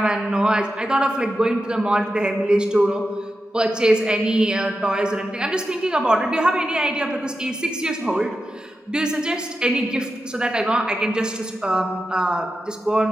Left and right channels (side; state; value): both; normal; correlation 0.90